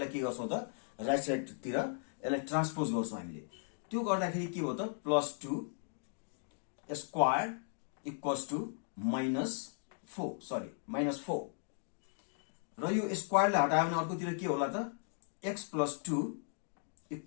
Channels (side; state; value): right; silent; digital silence